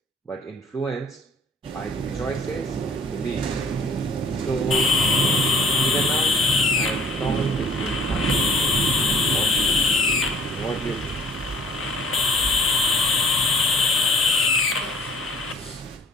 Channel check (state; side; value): normal; both; correlation 0.54